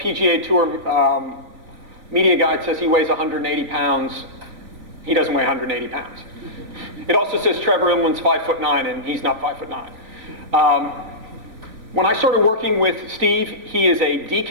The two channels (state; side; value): late; left; 3.7 ms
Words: Tour media guide says he weighs 180 pounds, he doesn't weigh 180 pounds. It also says Trevor Imland's 5'9", and he's not 5'9". When I started working with Steve, he is a